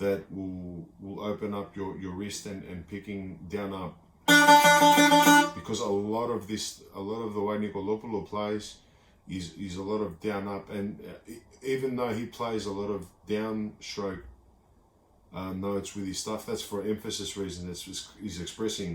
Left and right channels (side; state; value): both; identical; correlation 1.00